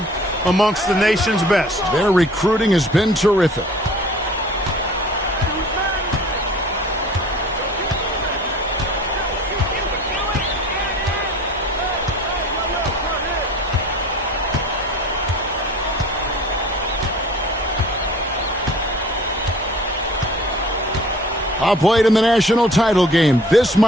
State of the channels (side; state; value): both; normal; correlation 0.47